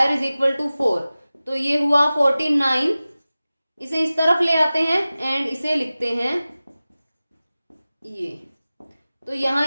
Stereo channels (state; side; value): inverted; both; correlation -0.97